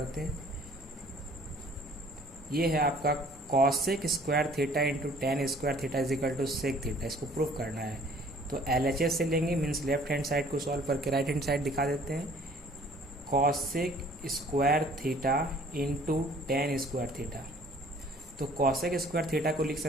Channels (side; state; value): both; normal; correlation 0.55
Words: हैं। ये है आपका cosec square theta into tan square theta is equal to sec theta. इसको प्रूफ करना है तो LHS से लेंगे, मीन्स लेफ्ट हैंड साइड को सॉल्व करके राइट हैंड साइड दिखा देते हैं। Cosec square theta into tan square theta. तो कॉसेक स्क्वायर थीटा को लिख